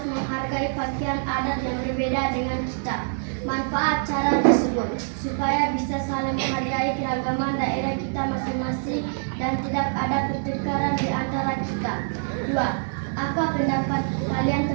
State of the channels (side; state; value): left; silent; 62 dB below the other